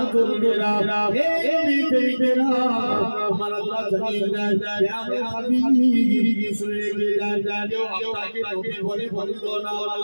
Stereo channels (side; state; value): both; inverted; correlation -1.00